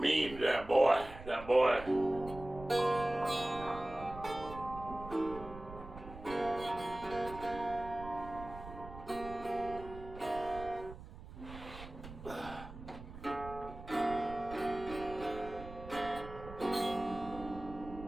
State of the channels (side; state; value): right; noise; rumble, 14 dB below the sound